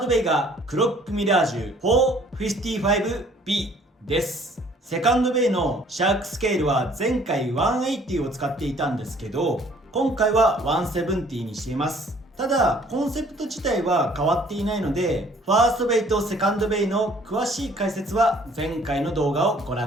ドベイがクロックミラージュ 455B です。セカンドベイのシャークスケールは前回180を使っていたんですけど、今回は170にしています。ただコンセプト自体は変わっていないので、ファーストベイとセカンドベイの詳しい解説は前回の動画をご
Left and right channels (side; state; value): both; normal; correlation 0.57